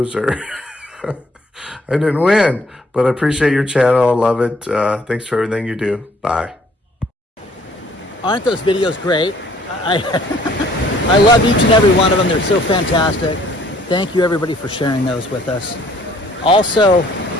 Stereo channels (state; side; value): normal; both; correlation 0.60